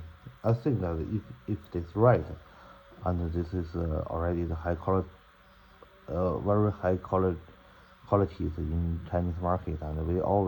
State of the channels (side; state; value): both; identical; correlation 1.00